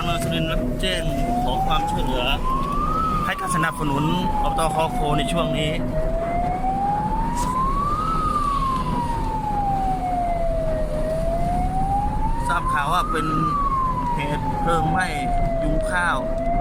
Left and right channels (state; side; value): identical; both; correlation 1.00